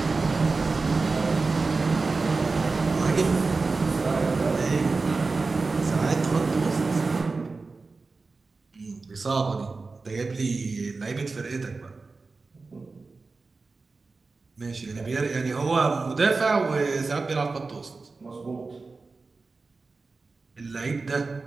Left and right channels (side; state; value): left; quieter; 3.9 dB